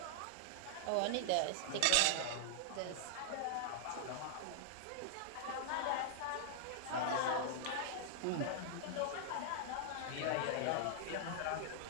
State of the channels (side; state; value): both; different; correlation -0.01